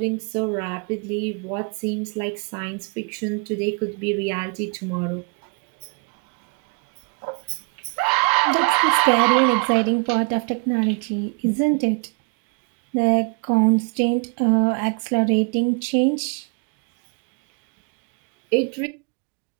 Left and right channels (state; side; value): quieter; left; 29.9 dB